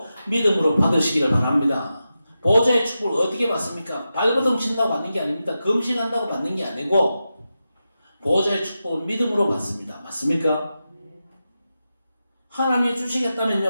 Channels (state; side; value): inverted; both; correlation -0.91